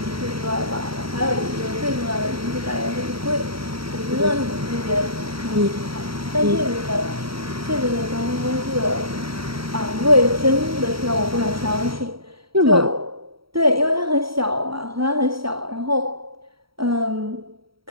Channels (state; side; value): late; left; 0.75 ms